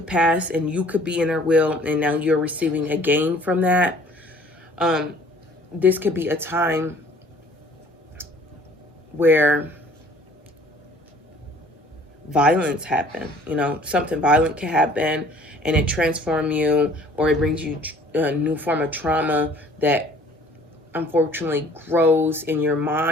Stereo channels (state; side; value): normal; both; correlation 0.54